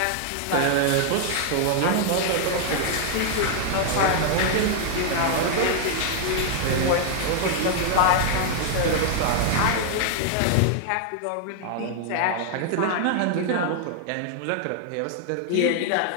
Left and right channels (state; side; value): different; both; correlation 0.00